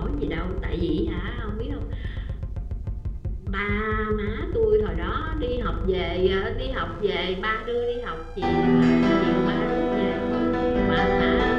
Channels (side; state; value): both; identical; correlation 1.00